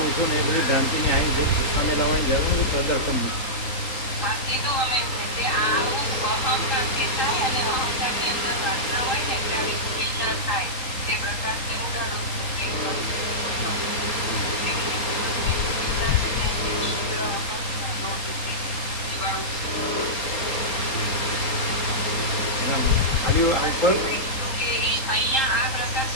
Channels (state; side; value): late; right; 3.8 ms